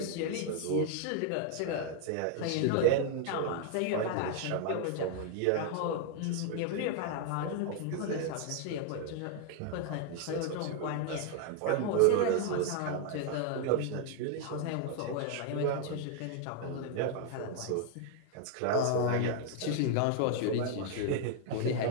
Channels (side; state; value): both; different; correlation 0.00